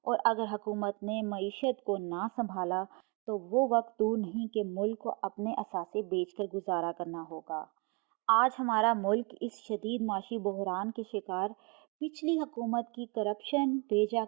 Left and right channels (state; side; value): quieter; left; 31.4 dB